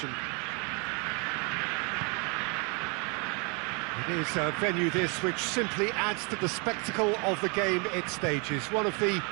It is a venue this which simply adds to the spectacle of the game it stages. One of the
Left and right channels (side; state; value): left; quieter; 33.3 dB